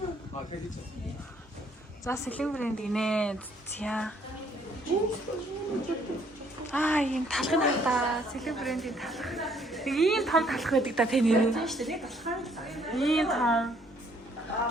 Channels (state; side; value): normal; both; correlation 0.65